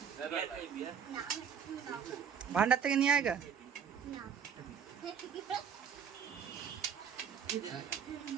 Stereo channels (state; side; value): quieter; left; 7.4 dB